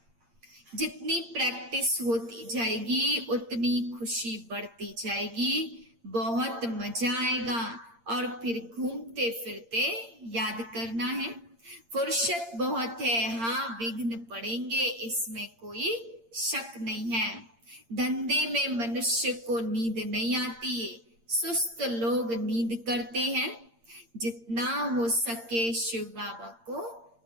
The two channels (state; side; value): late; left; 8.7 ms